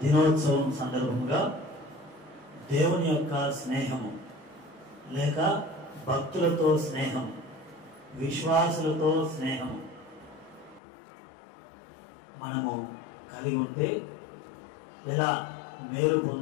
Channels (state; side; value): drops out; right; at 10.8 s